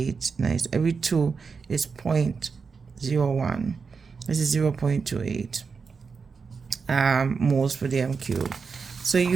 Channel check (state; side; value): quieter; left; 5.2 dB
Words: 9. Every 2 is 0.01. This is 0.28 moles per dm cube. So